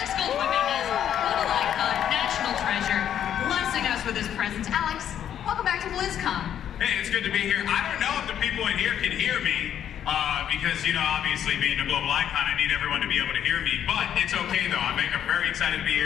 Goldwyn-Mendez, little icon, national treasure, blessing us with his presence. Alex, welcome back to BlizzCon. Hey, it's good to be here. I don't know if the people in here can hear me because, you know, obviously being a global icon, I need everyone to be able to hear me. But it's okay, though. I'm very excited to be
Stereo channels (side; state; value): right; quieter; 9.8 dB